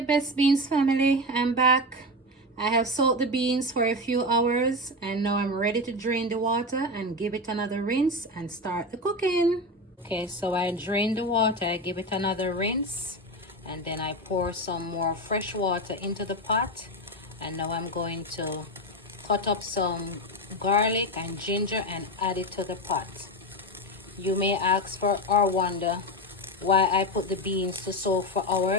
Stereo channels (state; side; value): normal; both; correlation 0.18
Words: beans family, I'm back. I have soaked the beans for a few hours and now I'm ready to drain the water and give it another rinse and start the cooking. Okay, so I drain the water, I give it another rinse, and then I pour some more fresh water into the pot. And now I'm going to cut up some garlic and ginger and add it to the pot. You may ask for or wonder why I put the beans to soak for